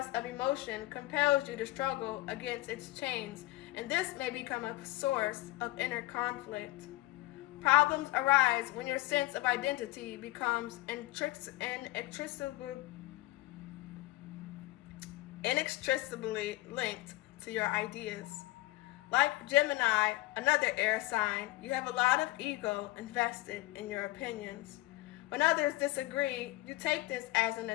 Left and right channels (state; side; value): quieter; right; 19.9 dB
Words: of emotion compels you to struggle against its chains, and this may become a source of inner conflict. Problems arise when your sense of identity becomes inextricably linked to your ideas. Like Gemini, another air sign, you have a lot of ego invested in your opinions. When others disagree, you take this as an